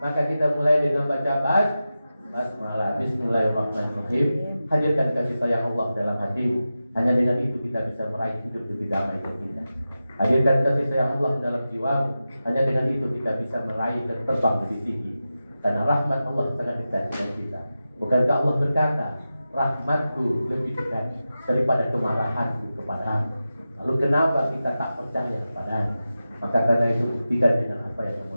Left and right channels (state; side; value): inverted; both; correlation -0.93